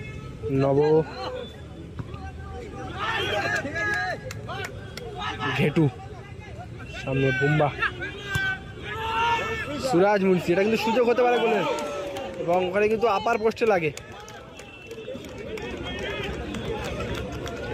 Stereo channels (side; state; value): both; identical; correlation 1.00